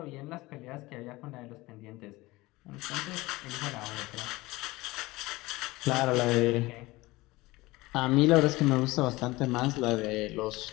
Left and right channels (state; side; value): quieter; right; 20.5 dB